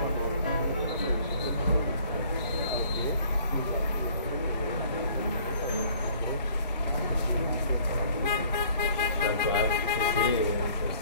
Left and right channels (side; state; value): both; inverted; correlation -0.56